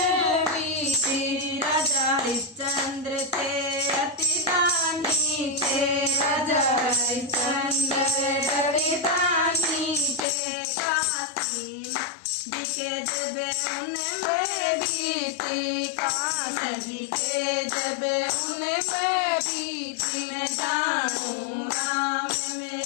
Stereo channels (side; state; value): right; drops out; at 10.2 s